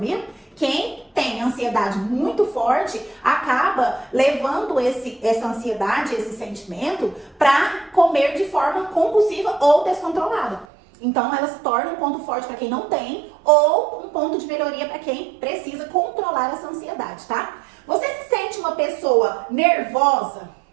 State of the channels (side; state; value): left; drops out; at 10.7 s